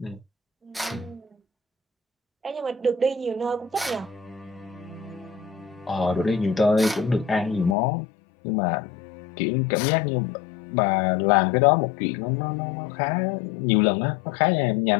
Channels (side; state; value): right; drops out; at 7.8 s